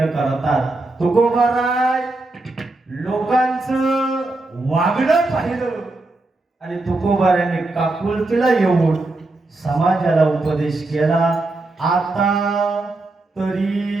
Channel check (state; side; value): quieter; left; 3.0 dB